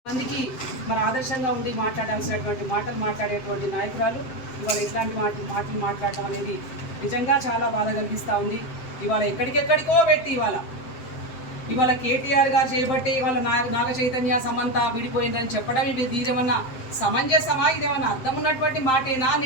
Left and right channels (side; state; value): right; late; 7.7 ms